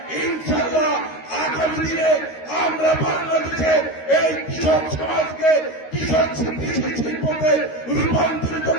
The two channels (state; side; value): late; right; 13 ms